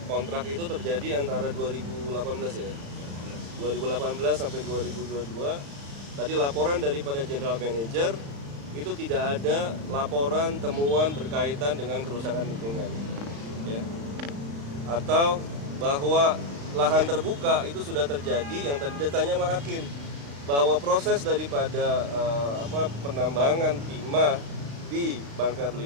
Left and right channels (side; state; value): left; late; 35 ms